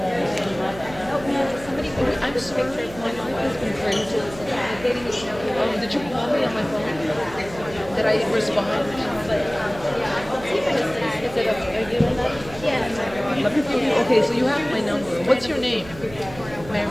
I'm sorry, my life has been crazy. Did you call me on my phone? Did I respond?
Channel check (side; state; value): right; noise; hum, 16 dB below the sound